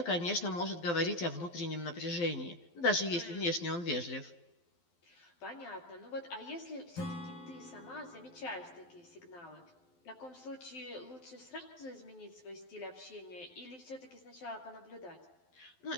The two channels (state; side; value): late; right; 12 ms